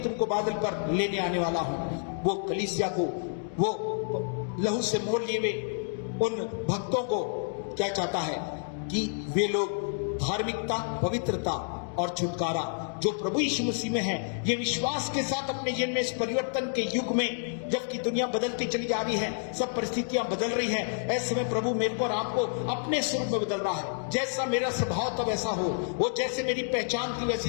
बादल पर लेने आने वाला हूं, वो कलीसिया को, वो लहू से मोल लिए हुए उन भक्तों को क्या चाहता है कि वे लोग धार्मिकता, पवित्रता और छुटकारा जो प्रभु यीशु मसीह में है, ये विश्वास के साथ अपने जीवन में इस परिवर्तन के युग में, जबकि दुनिया बदलती चली जा रही है, सब परिस्थितियां बदल रही हैं, ऐसे में प्रभु मेरे को और आपको अपने स्वरूप में बदल रहा है। जैसा मेरा स्वभाव तब ऐसा हो, वो जैसे मेरी पहचान थी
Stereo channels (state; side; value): silent; right; digital silence